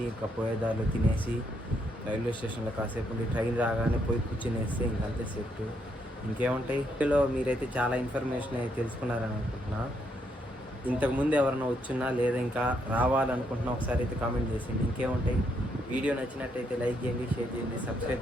ఇంకా పోయేదారులు తినేసి రైల్వే స్టేషన్లో కాసేపు ఉండి ట్రైన్ రాగానే పోయి కూర్చునేస్తే ఇంకంతే సెట్. ఇంకేముంటాయి, ఇందులో మీరైతే చాలా ఇన్ఫర్మేషన్ అయితే తెలుసుకున్నారని అనుకుంటున్నా. ఇంతకుముందు ఎవరైనా వచ్చున్నా లేదా ఇంకా రావాలనుకుంటున్నా ఒకసారి అయితే కామెంట్ చేసేయండి. ఇంకేముంటాయి, వీడియో నచ్చినట్టయితే లైక్ చేయండి, షేర్ చేయండి,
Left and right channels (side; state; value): both; normal; correlation 0.75